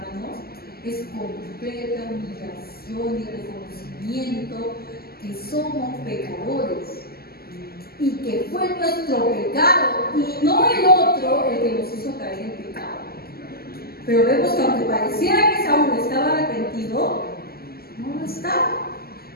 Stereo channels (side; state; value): right; late; 0.45 ms